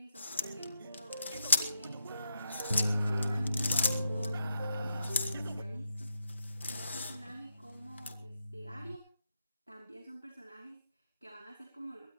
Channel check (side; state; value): both; inverted; correlation -0.81